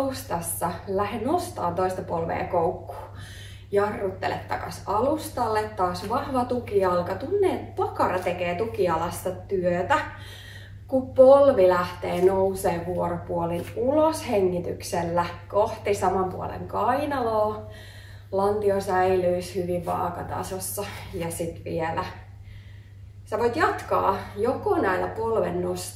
Lähde nostaa toista polvea koukkuun. Jarruttele takas alustalle. Taas vahva tukijalka. Tunne, että pakara tekee tukijalasta työtä. Kun polvi lähtee nousee vuoropuolin ulos hengityksellä kohti saman puolen kainaloa. Lantio säilyisi hyvin vaakatasossa. Ja sitten vielä sä voit jatkaa joko näillä polven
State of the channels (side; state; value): both; identical; correlation 1.00